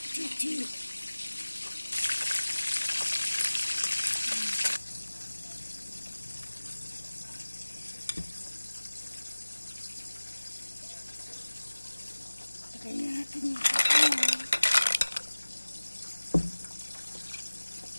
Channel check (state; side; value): inverted; both; correlation -1.00